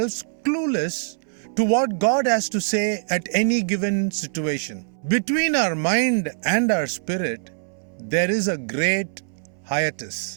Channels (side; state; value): left; silent; 63 dB below the other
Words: clueless to what God has to say at any given situation. Between our mind and our spirit, there is a great